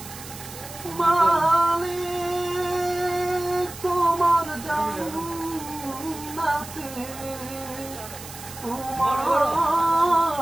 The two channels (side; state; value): right; noise; hiss, 14 dB below the sound